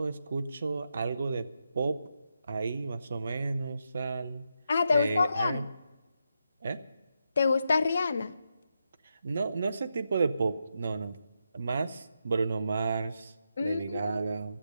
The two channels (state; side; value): inverted; both; correlation -0.84